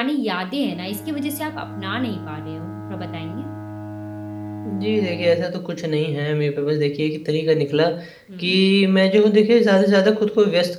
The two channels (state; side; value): identical; both; correlation 1.00